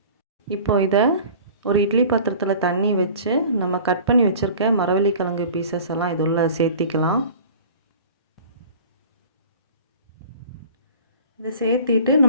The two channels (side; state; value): both; inverted; correlation -0.43